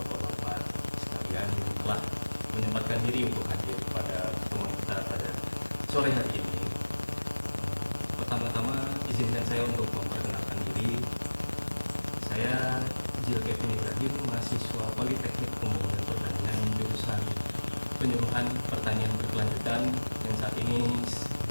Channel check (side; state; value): both; inverted; correlation -1.00